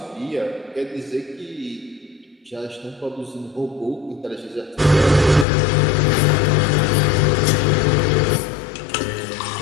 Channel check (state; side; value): drops out; right; at 5.5 s